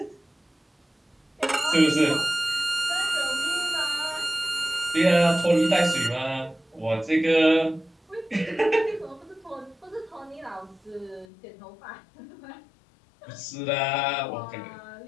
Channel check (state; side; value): drops out; right; at 11.2 s